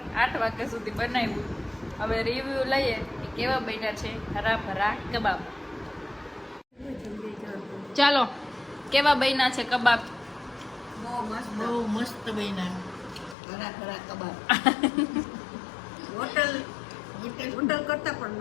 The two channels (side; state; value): right; drops out; at 13.4 s